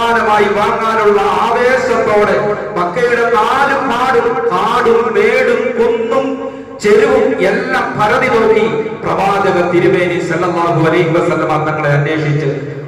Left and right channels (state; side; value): identical; both; correlation 1.00